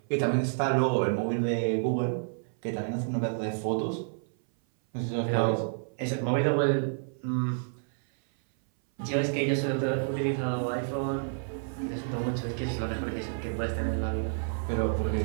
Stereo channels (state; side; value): silent; left; 57 dB below the other